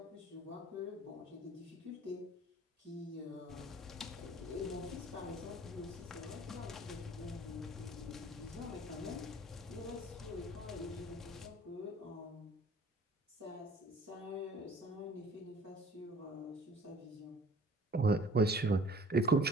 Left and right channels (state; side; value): normal; both; correlation 0.52